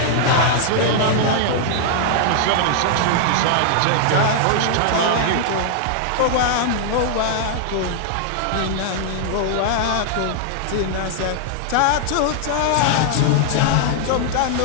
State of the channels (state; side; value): different; both; correlation -0.01